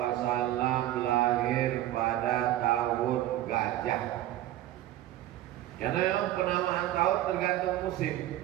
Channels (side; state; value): left; quieter; 13.9 dB